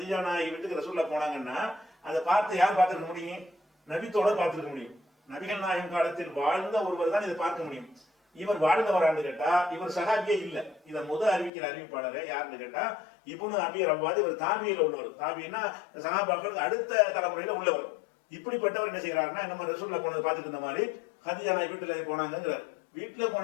நாயகி வீட்டுக்கு ரசூலுல்லாஹ் போனாங்கன்னா அதை பார்த்து யார் பார்த்திருக்க முடியும்? நபித்தோட பார்த்திருக்க முடியும். நபிகள் நாயகம் காலத்தில் வாழ்ந்த ஒருவர் தான் இதை பார்க்க முடியும். இவர் வாழ்ந்தவரான்னு கேட்டா இவர் சஹாபியே இல்ல. இதை அறிவிக்கிற அறிவிப்பாளர் யாருன்னு கேட்டா இப்னு அபி ரவ்வாத். இவர் தாபியில உள்ளவர். தாபின்னா சஹாபாக்களுக்கு அடுத்த தலைமுறையில உள்ளவர். இப்படிப்பட்டவர் என்ன செய்யறாருன்னா, நம்ம ரசூலுல்லாஹ் போனதை பார்த்துட்டு இருந்த மாதிரி ஹதீஜா நாயகி வீட்டுல போனாங்கிறார். வீட்டுல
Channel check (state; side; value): drops out; right; at 11.5 s